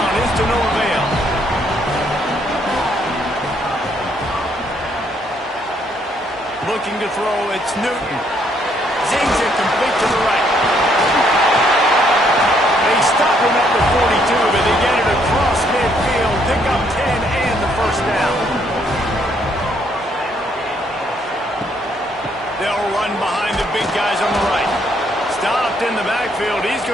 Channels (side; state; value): both; normal; correlation 0.70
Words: is to no avail. Looking to throw, it's Newton. Zings it complete to the right. They stop him at the 42, but they get it across midfield. Pick up 10 and the 1st down. They'll run behind the big guys on the right. Stopped in the backfield. He's